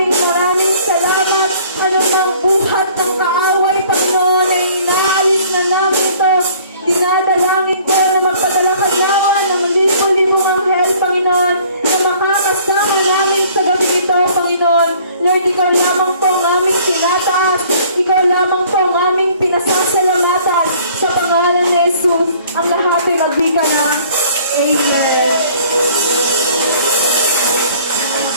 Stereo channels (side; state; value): both; inverted; correlation -0.55